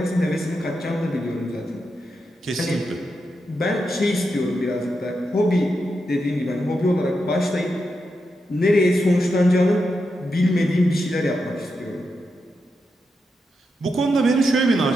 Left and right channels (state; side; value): normal; both; correlation 0.86